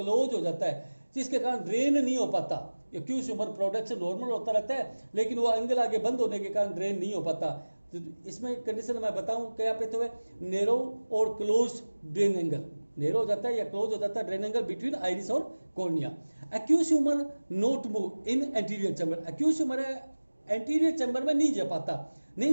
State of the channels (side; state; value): both; inverted; correlation -1.00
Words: हो जाता है, जिसके कारण ड्रेन नहीं हो पाता। एक्यूज ह्यूमर प्रोडक्शन नॉर्मल होता रहता है, लेकिन वो एंगल आगे बंद होने के कारण ड्रेन नहीं हो पाता। तो इसमें कंडीशन मैं बताऊं क्या पे तो है, नैरो और क्लोज ड्रेन एंगल, नैरो हो जाता है या क्लोज हो जाता है ड्रेन एंगल बिटवीन आइरिस और cornea. Aqueous humour not move in anterior chamber, aqueous humour है एंटीरियर चैम्बर में नहीं जा पाता,